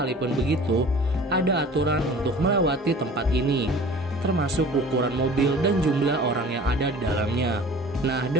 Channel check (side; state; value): both; normal; correlation 0.44